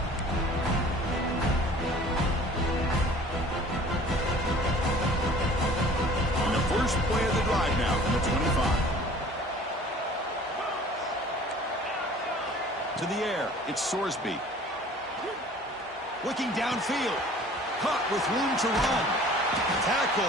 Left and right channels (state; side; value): normal; both; correlation 0.48